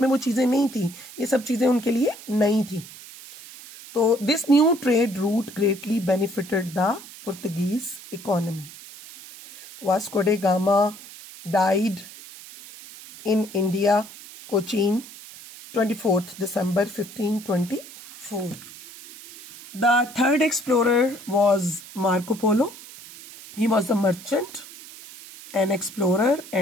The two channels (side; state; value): right; noise; hiss, 17 dB below the sound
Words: में वो चीजें नहीं थी, ये सब चीजें उनके लिए नई थी. तो this new trade route greatly benefited the Portuguese economy. Vasco day gamma died in India, Cochin, 24th December 1524. The third explorer was Marco Polo. He was a merchant, an explorer,